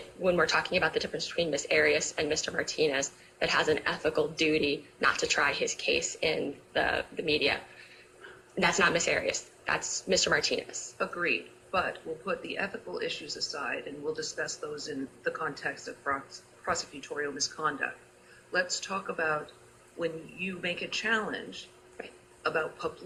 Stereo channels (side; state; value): both; identical; correlation 1.00